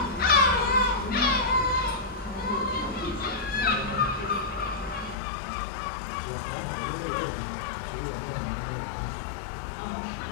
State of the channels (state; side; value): drops out; right; at 5.2 s